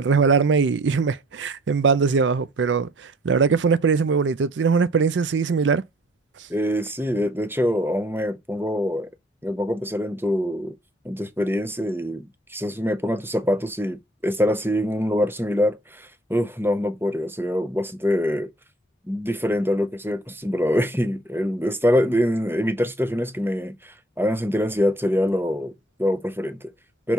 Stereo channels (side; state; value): both; normal; correlation 0.58